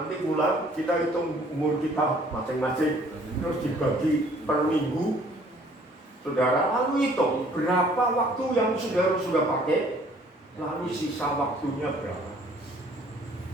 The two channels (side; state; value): both; normal; correlation 0.57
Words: pulang kita hitung umur kita masing-masing, terus dibagi per minggu. Saudara lalu hitung berapa waktu yang saudara sudah pakai, lalu sisa waktunya berapa.